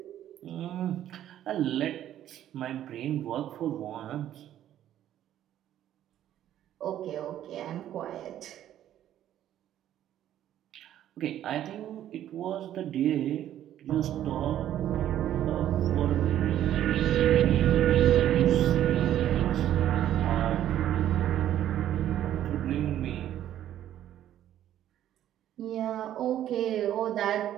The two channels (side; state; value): left; quieter; 11.7 dB